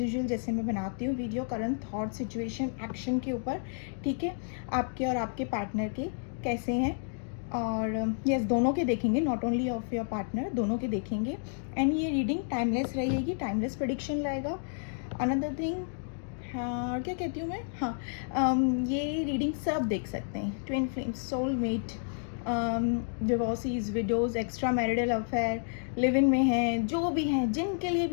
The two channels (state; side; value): silent; right; digital silence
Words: जैसे मैं बनाती हूँ video, current thought situation action के ऊपर। ठीक है, आपके और आपके पार्टनर के कैसे हैं, और यस दोनों के देखेंगे, not only of your partner, दोनों के देखेंगे। एंड ये रीडिंग टाइमलेस रहेगी, टाइमलेस प्रेडिक्शन लाएगा। अनदर थिंग, हाँ क्या कहती हूँ मैं, हाँ ये रीडिंग सब देख सकते हैं। Twin flames, soulmate, divorcees, widows, extra marital affair, live in में हैं, जो भी हैं, जिनके लिए